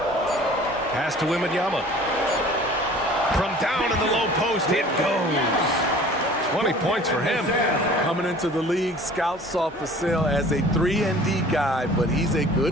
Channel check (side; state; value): both; normal; correlation 0.47